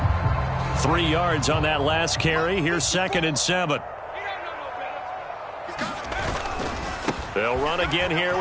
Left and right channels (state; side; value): identical; both; correlation 1.00